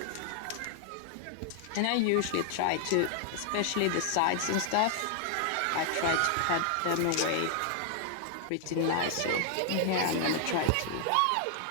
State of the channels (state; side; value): different; both; correlation 0.00